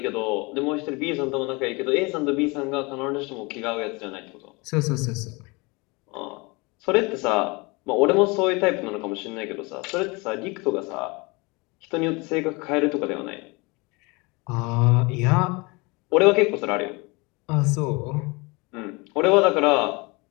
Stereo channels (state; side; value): quieter; right; 26.7 dB